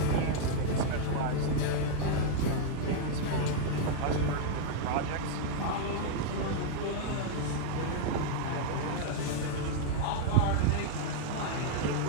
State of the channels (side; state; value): both; different; correlation -0.01